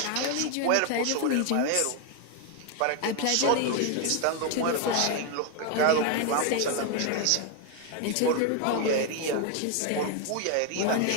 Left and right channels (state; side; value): different; both; correlation 0.01